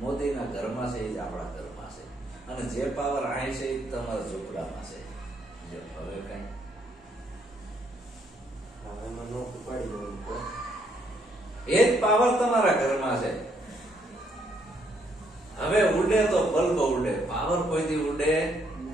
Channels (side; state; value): both; normal; correlation 0.71